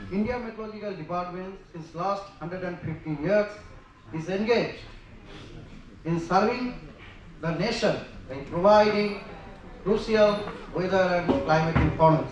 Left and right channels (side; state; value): both; identical; correlation 1.00